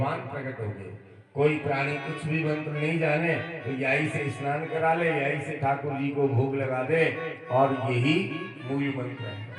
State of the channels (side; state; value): both; identical; correlation 1.00